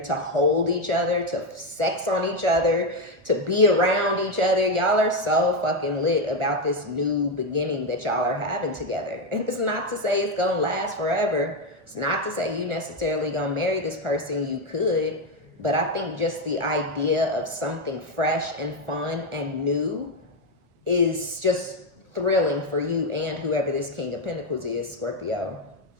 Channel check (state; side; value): late; left; 1.2 ms